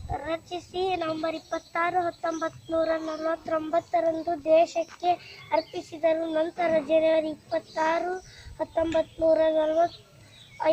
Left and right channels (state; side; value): identical; both; correlation 1.00